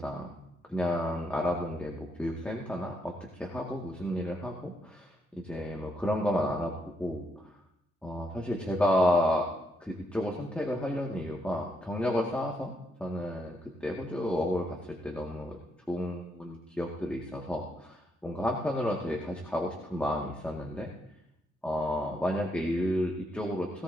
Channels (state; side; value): normal; both; correlation 0.77